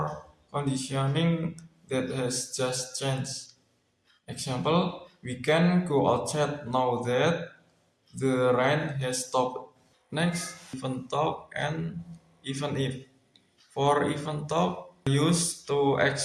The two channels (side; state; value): both; identical; correlation 1.00